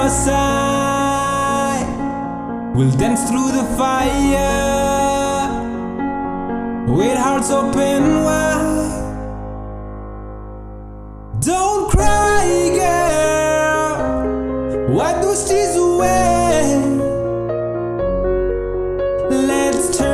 side. We'll dance through the fire with hearts open wide. Don't cry, girl, wipe those tears away. Let's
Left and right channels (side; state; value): both; identical; correlation 1.00